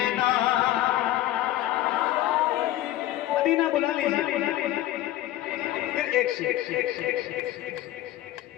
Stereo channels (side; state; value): right; quieter; 14.3 dB